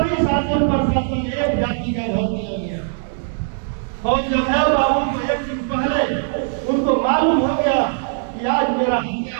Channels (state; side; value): silent; left; digital silence